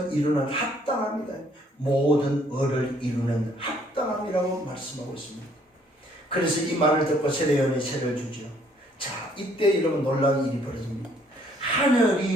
이루는 합당함이다. 모든 의를 이루는 합당함이라고 말씀하고 있습니다. 그래서 이 말을 듣고 세례요한이 세례를 주죠. 자, 이때 여러분 놀라운 일이 벌어집니다.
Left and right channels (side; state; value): both; normal; correlation 0.64